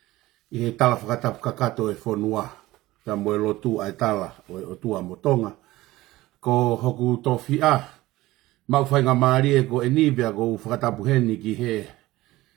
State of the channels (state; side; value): quieter; left; 17.9 dB